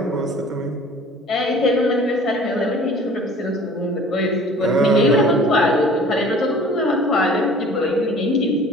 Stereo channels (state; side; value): normal; both; correlation 0.48